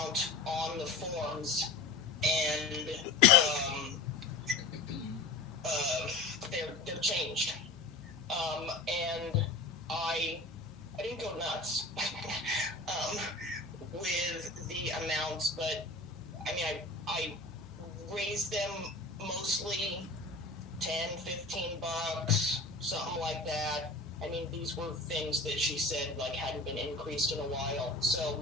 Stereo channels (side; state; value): right; quieter; 3.5 dB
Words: on the forms, and they're changed. And I didn't go nuts with the amounts, but I mean, I raised them mostly $10-15, something like that. I mean, these were things that she said like hadn't been increased in a while. So